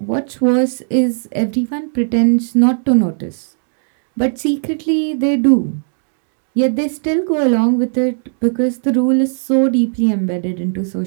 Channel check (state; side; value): silent; left; 62 dB below the other